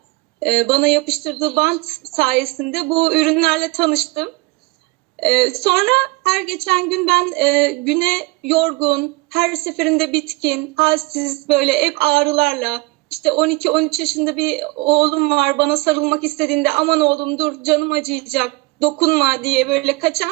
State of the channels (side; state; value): left; quieter; 23.9 dB